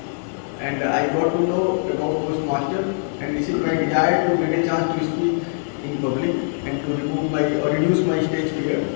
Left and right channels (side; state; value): right; silent; digital silence